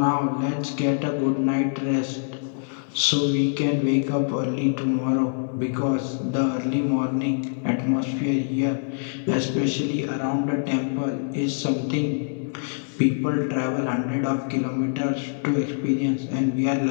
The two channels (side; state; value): right; silent; digital silence